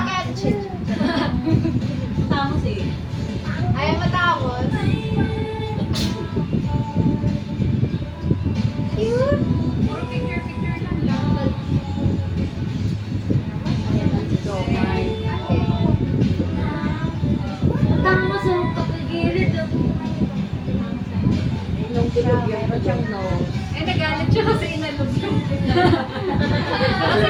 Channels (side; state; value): both; identical; correlation 1.00